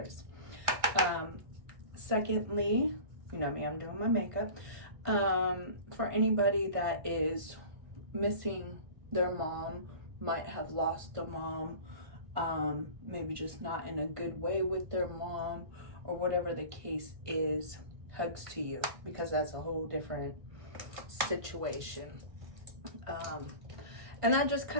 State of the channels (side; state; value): left; late; 1.5 ms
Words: Secondly, you know me, I'm doing my makeup. For anybody that is missing their mom, might have lost a mom, maybe just not in a good way with their mom, or whatever the case is, hugs to you, because that's a whole different situation. And that just